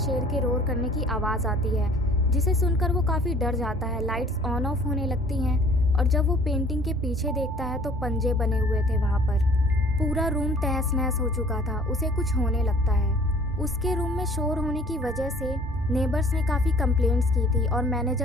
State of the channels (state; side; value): noise; right; rumble, 16 dB below the sound